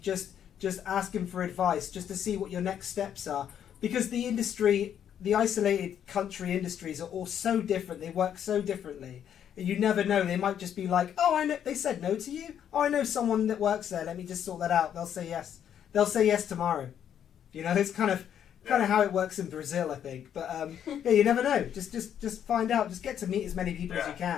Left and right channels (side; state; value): right; quieter; 9.4 dB